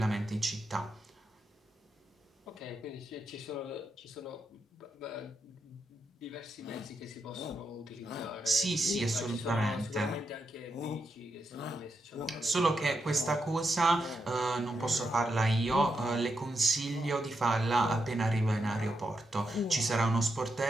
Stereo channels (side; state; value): both; normal; correlation 0.84